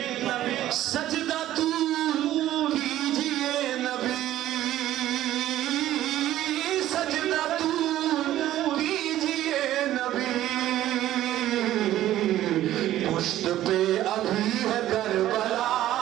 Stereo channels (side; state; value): left; quieter; 13.5 dB